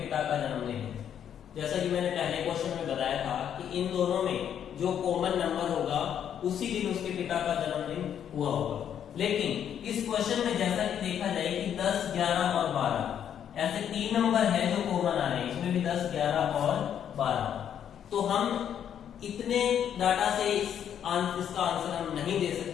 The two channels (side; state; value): right; quieter; 9.2 dB